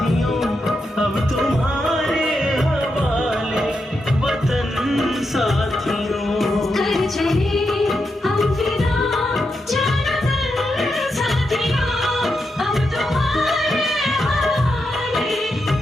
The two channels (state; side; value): normal; both; correlation 0.85